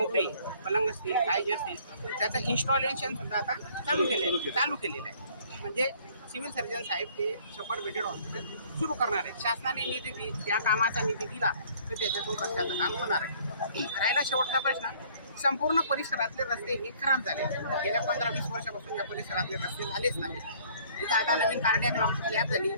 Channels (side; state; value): both; inverted; correlation -0.57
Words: पलंग असतील, काय जे असतील, त्याचं इन्स्टॉलेशन सुद्धा आता चालू केलेलं आहे. म्हणजे सिव्हिल सर्जन साहेब ते 100 बेडेड हॉस्पिटल सुरू करणार आहे. शासनाने निधी त्या कामाचा निधी दिला तर त्याच्यातून रस्त्याचं काम होणार आहे. राहिला शेवटचा प्रश्न, संपूर्ण परिसरातले रस्ते हे खराब झाले. गेल्या 15-20 वर्षापासून या परिसरातले रस्ते झालेच नाही. इथं आता नवीन कार्डियाक लॅब झाली,